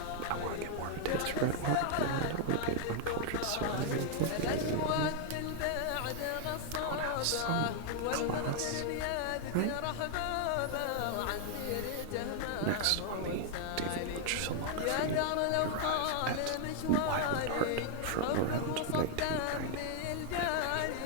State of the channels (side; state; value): both; different; correlation 0.00